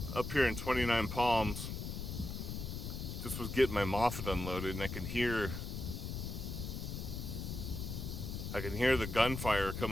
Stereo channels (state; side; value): noise; left; rumble, 5 dB below the sound